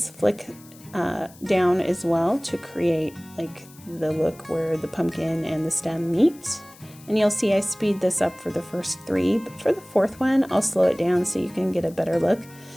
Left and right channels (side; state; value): left; noise; hiss, 23 dB below the sound